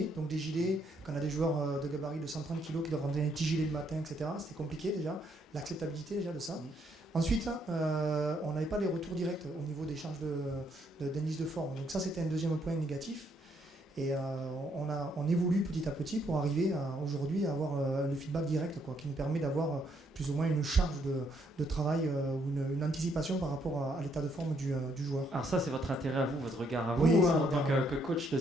donc des gilets, quand on a des joueurs de gabarit de 130 kg qui doivent rentrer un petit gilet le matin, etc., c'était compliqué déjà, l'acceptabilité déjà de ça. Ensuite, on n'avait pas les retours directs au niveau des charges d'indice de forme, donc ça c'était un deuxième point négatif. Et on évolue petit à petit pour arriver aujourd'hui à avoir le feedback direct, qui nous permet d'avoir plus ou moins une charge de travail ou une anticipation par rapport à l'état de forme du joueur. Alors ça, c'est votre intérêt à vous, votre regard à vous, oui, en tant que coach de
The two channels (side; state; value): both; normal; correlation 0.72